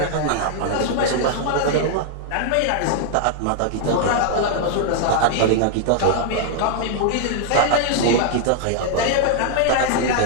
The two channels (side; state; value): both; different; correlation 0.00